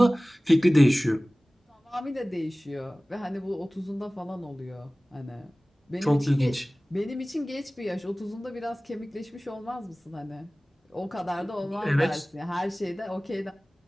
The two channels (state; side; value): normal; both; correlation 0.98